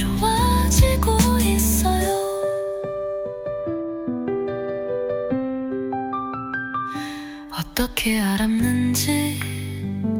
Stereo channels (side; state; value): both; identical; correlation 1.00